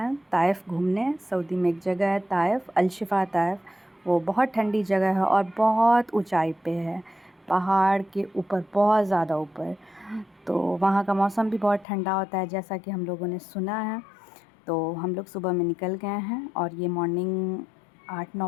ताइफ़ घूमने। सऊदी में एक जगह है ताइफ़, अल-शिफ़ा ताइफ़। वो बहुत ठंडी जगह है और बहुत ऊंचाई पे है, पहाड़ के ऊपर, बहुत ज़्यादा ऊपर। तो वहाँ का मौसम भी बहुत ठंडा होता है, जैसा कि हम लोगों ने सुना है। तो हम लोग सुबह में निकल गए हैं और ये मॉर्निंग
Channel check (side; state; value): right; drops out; at 11.9 s